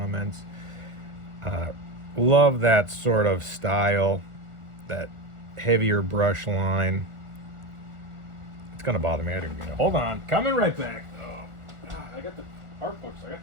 Love that sort of style, that heavier brush line. It's gonna bother me. Hold on, coming right back. I got the art books. I got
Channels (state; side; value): late; left; 1.4 ms